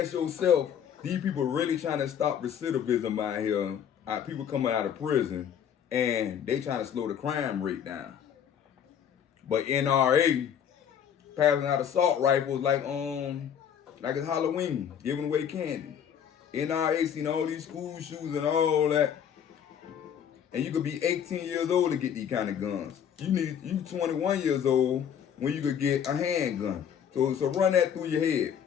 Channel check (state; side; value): quieter; right; 8.6 dB